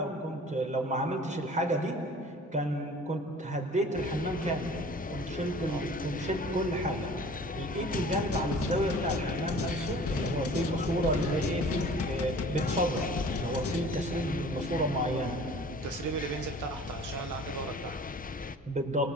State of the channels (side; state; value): both; normal; correlation 0.47